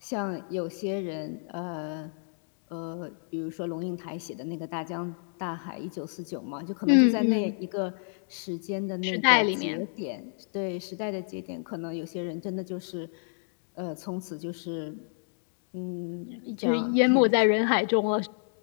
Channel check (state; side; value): silent; right; digital silence